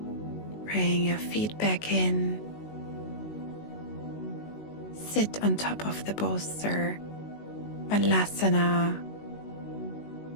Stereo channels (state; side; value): late; right; 19 ms